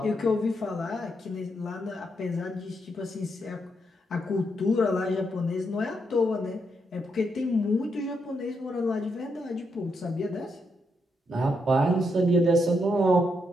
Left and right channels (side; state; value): both; normal; correlation 0.80